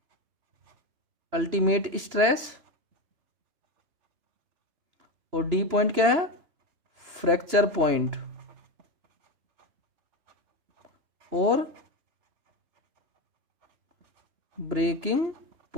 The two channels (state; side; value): late; left; 2.9 ms